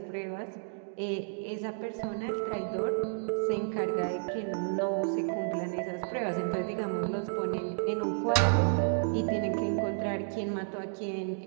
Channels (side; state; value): left; silent; 57 dB below the other